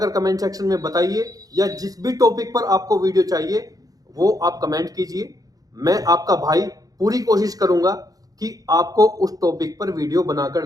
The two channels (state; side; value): late; left; 0.18 ms